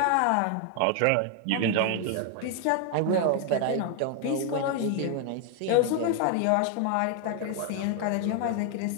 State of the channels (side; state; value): both; different; correlation 0.00